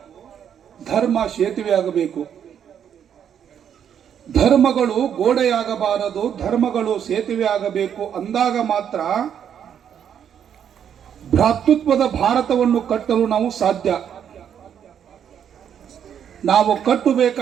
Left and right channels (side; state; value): left; quieter; 8.7 dB